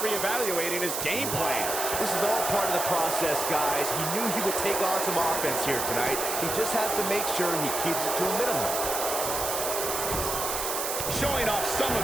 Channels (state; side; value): noise; right; hiss, 2 dB below the sound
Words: reevaluating his game plan. This is all part of the process, guys. He knew he would take on some offense here tonight. He just has to make sure he keeps it to a minimum. Showing off some